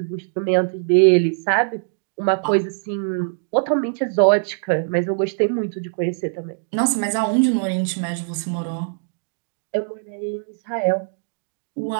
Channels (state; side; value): silent; left; digital silence